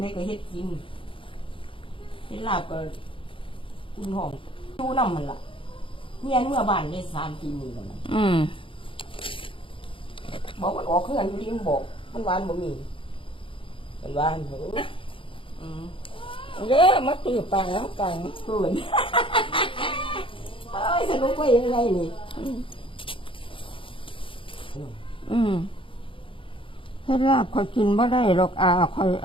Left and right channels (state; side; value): late; right; 0.25 ms